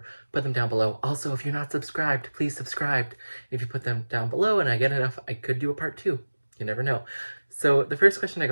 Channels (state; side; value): inverted; both; correlation -1.00